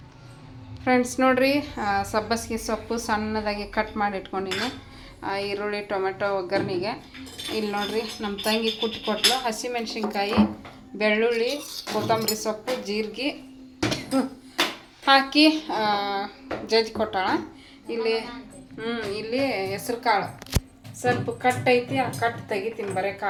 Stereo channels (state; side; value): identical; both; correlation 1.00